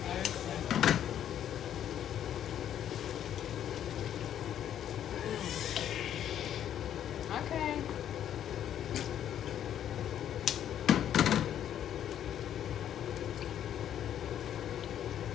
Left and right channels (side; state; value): right; quieter; 10.3 dB